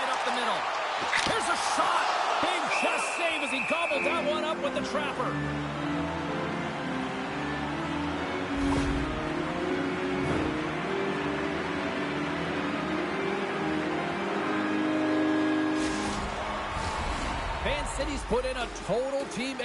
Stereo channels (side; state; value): both; identical; correlation 1.00